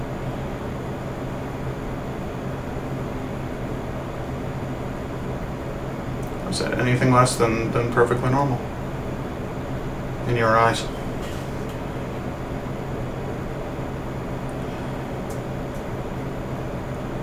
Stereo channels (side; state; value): both; identical; correlation 1.00